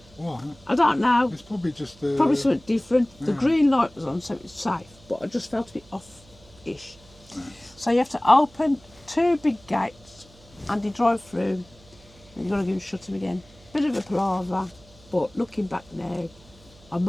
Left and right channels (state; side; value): noise; right; hum, 25 dB below the sound